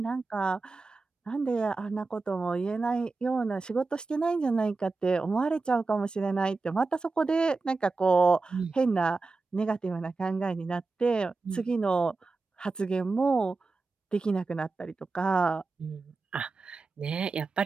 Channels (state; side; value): quieter; left; 3.8 dB